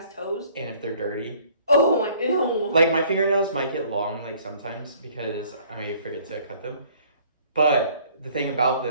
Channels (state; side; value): inverted; both; correlation -0.57